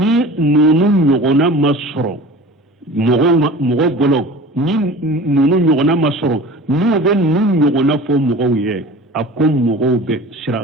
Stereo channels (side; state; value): both; normal; correlation 0.39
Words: nunu nyogona masoro mogo bolo ni nunu nyogona masoro nu be nu nyogona fo mogo ye akom mogo be sira